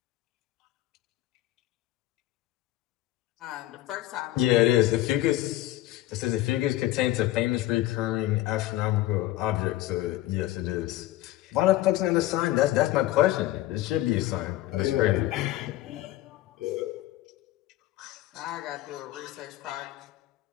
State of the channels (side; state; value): right; quieter; 15.7 dB